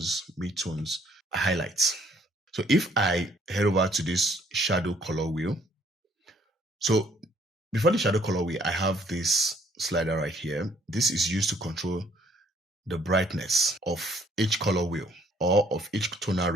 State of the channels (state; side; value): normal; both; correlation 0.63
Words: midtones, highlights. So if I head over to this shadow color wheel, so before the shadow color wheel, I have this slider right here. This is used to control the brightness of each color wheel or of each tonal